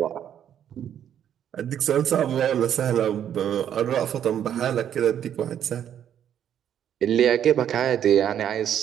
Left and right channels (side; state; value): left; quieter; 9.7 dB